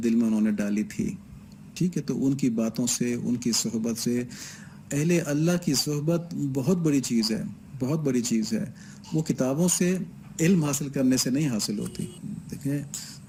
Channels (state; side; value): identical; both; correlation 1.00